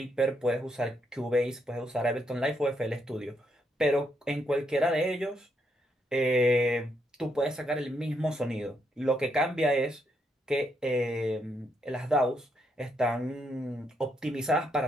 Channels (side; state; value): both; normal; correlation 0.77